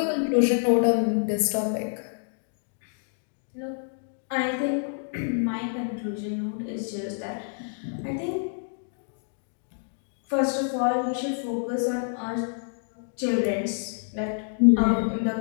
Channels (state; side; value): silent; right; digital silence